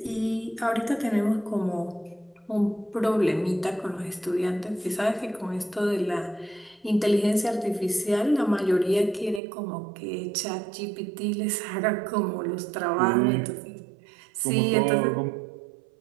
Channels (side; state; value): left; drops out; at 9.4 s